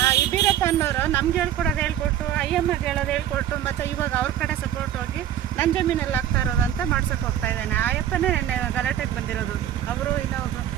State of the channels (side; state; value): left; quieter; 11.0 dB